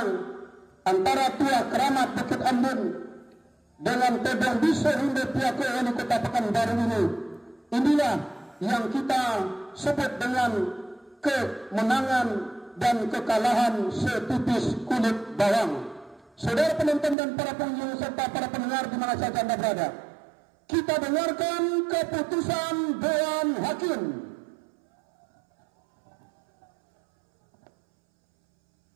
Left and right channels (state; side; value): drops out; left; at 17.2 s